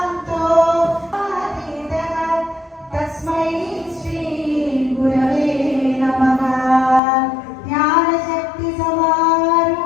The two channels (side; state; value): right; drops out; at 7.0 s